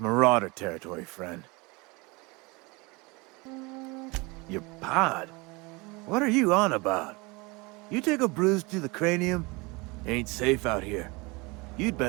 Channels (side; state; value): left; quieter; 26.1 dB